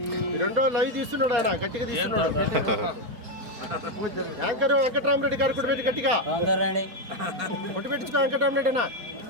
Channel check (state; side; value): late; left; 4.2 ms